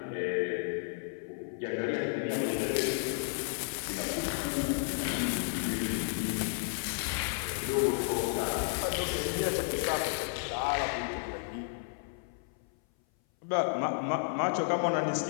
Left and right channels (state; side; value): silent; right; 56 dB below the other